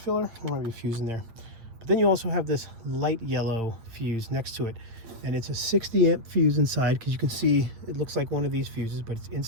There might be a fuse in there. But then you also have this light yellow fuse next to it. And it's a 60 amp fuse inside, because you can see it looks like one of these fuses, but it's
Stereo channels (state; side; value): late; left; 8.9 ms